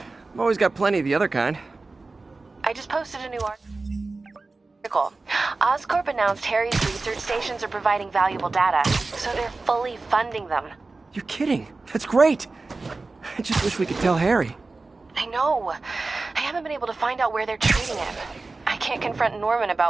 I've always got plenty of the other kind. I just posted a new article. Oscorp announced Harry's research stations are providing valuable data, so they're fully funding them. You're kidding. That's great. I just wish we could tell Harry. I know. I haven't been able to find out where they're treating him. I can't confront Norman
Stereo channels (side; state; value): left; quieter; 3.6 dB